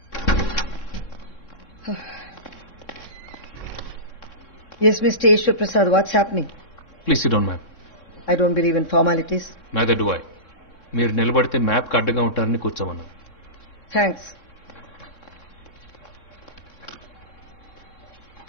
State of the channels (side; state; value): right; late; 3.6 ms